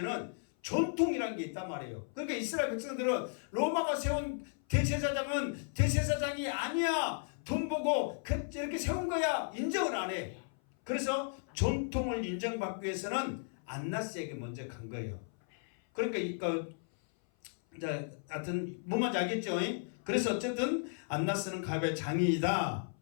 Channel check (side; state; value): right; silent; 55 dB below the other